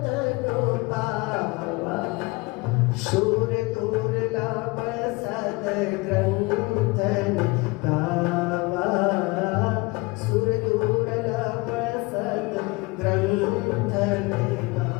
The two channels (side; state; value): right; quieter; 24.9 dB